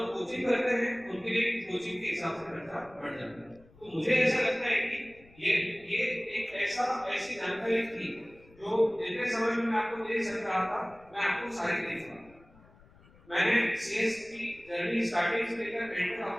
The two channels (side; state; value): left; noise; rumble, 26 dB below the sound